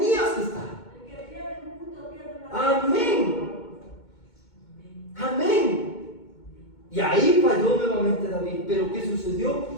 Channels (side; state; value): right; late; 2.2 ms